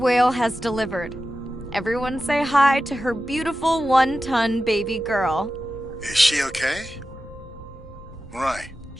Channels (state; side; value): normal; both; correlation 0.93